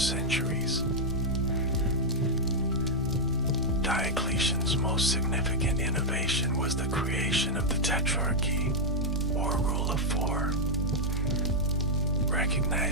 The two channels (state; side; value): normal; both; correlation -0.03